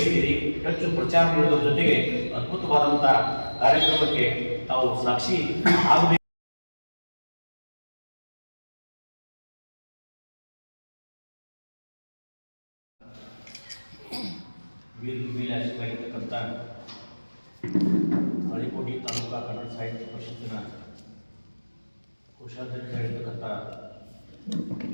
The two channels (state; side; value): inverted; both; correlation -1.00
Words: ಹೆಚ್ಚು ಪ್ರಚಾರ ನೀಡುವುದರ ಜೊತೆಗೆ ಅದ್ಭುತವಾದಂಥ ಕಾರ್ಯಕ್ರಮಕ್ಕೆ ತಾವು ಸಾಕ್ಷಿ ಆಗಬೇಕು. ವೇದಿಕೆ ಮೇಲೆ ಆಶೀರ್ವಾಗಿರ್ತಕ್ಕಂಥ ತಾಳಿಕೋಟೆ ತಾಲೂಕಾ ಕನ್ನಡ ಸಾಹಿತ್ಯ ಪರಿಷತ್ತಿನ ಕೋಶಾಧ್ಯಕ್ಷರಾಗಿರ್ತಕ್ಕಂಥ